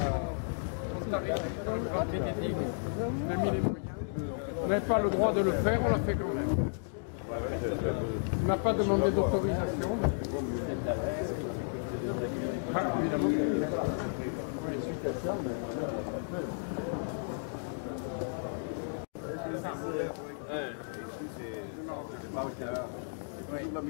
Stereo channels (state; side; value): silent; right; digital silence